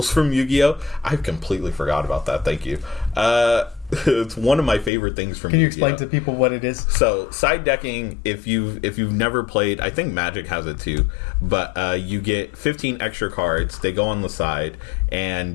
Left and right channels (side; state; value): right; drops out; at 4.9 s